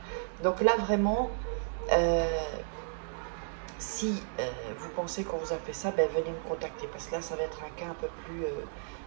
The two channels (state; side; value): silent; left; digital silence